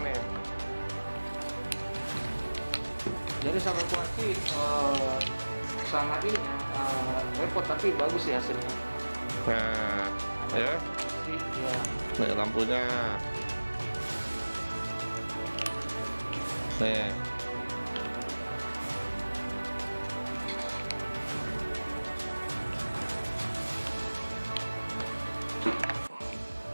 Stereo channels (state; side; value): inverted; both; correlation -1.00